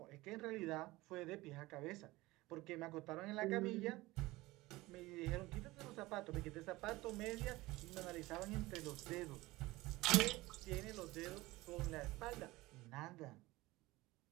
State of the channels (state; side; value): quieter; left; 19.8 dB